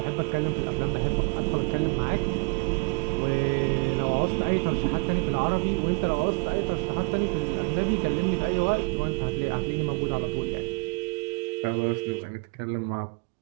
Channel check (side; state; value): left; silent; digital silence